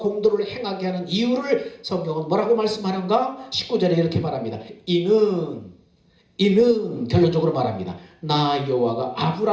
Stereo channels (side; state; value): both; identical; correlation 1.00